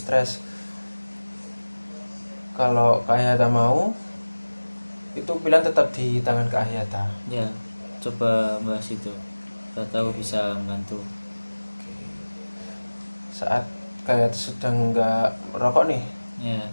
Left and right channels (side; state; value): both; inverted; correlation -1.00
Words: Kalau Kak Hayata mau, itu pilihan tetap di tangan Kak Hayata. Ya, coba bahas itu. Kita tahu bisa membantu. Saat Kak Hayata sedang nggak merokok nih, Ya,